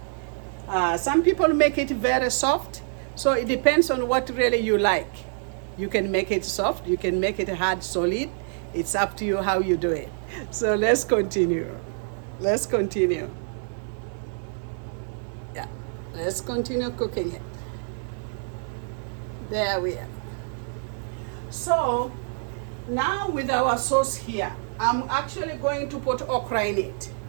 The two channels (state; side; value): silent; left; digital silence